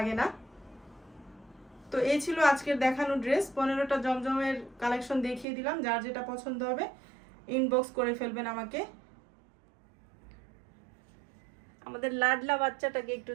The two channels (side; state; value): left; drops out; at 5.5 s